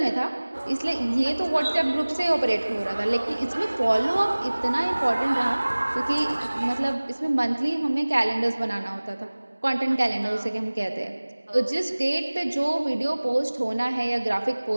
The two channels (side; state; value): both; inverted; correlation -1.00